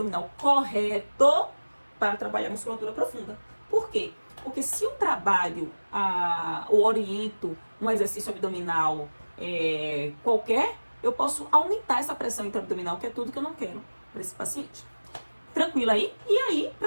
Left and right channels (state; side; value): inverted; both; correlation -1.00